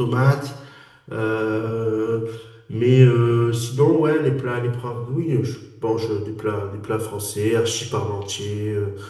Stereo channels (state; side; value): identical; both; correlation 1.00